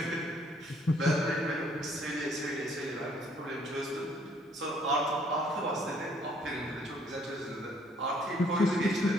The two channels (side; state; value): both; normal; correlation 0.64